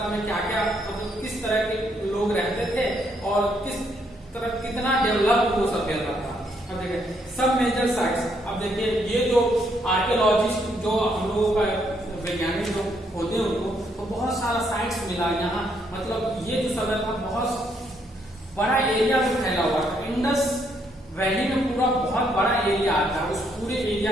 में क्या क्या मतलब किस तरह के लोग रहते थे और कितना डेवलप वो सभ्यता था। अब देखिए सब मेजर साइट्स। अब देखिए ये जो आर्कियोलॉजिस्ट जो हम लोगों का वैज्ञानिक जो होते हैं उनको तो बहुत सारा साइट्स मिला यहाँ। मतलब ये जो सभ्यता बहुत बड़ा एरिया में फैला हुआ था। इंडस वैली में पूरा बहुत बड़ा एरिया आता है, उस पूरे एरिया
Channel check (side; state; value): both; normal; correlation 0.73